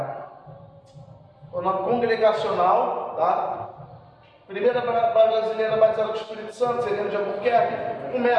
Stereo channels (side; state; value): both; identical; correlation 1.00